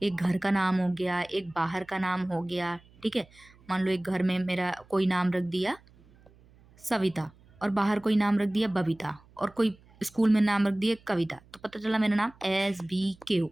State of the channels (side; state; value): right; noise; hum, 27 dB below the sound